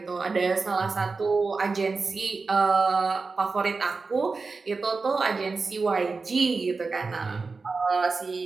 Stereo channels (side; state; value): left; quieter; 4.2 dB